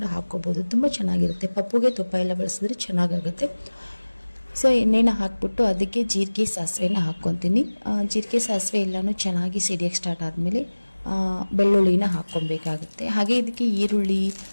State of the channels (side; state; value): both; inverted; correlation -1.00